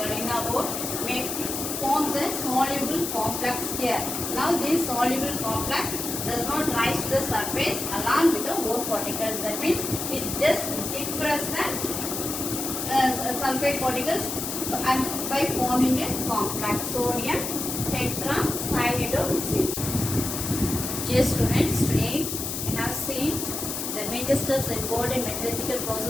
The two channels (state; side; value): noise; left; hiss, 4 dB below the sound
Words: ore, forms a soluble complex here. Now this soluble complex does not rise to the surface along with the ore particles. That means it just depresses the sulfide particles and by forming a complex sodium tetracyanidose. Dear students, today we have seen the major steps involved in metallurgical